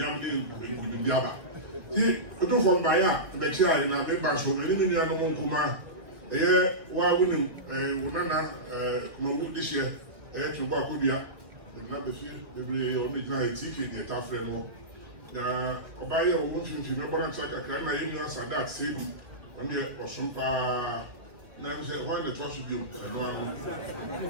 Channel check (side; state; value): left; late; 1.8 ms